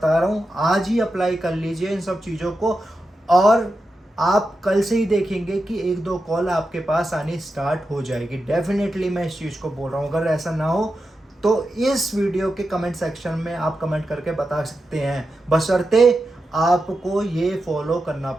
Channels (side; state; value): both; normal; correlation 0.89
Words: रहा हूँ, आज ही अप्लाई कर लीजिए इन सब चीज़ों को, और आप कल से ही देखेंगे कि 1-2 कॉल आपके पास आनी स्टार्ट हो जाएगी। डेफिनेटली मैं इस चीज़ को बोल रहा हूँ। अगर ऐसा ना हो तो इस वीडियो के कमेंट सेक्शन में आप कमेंट करके बता सकते हैं, बशर्ते आपको ये फॉलो करना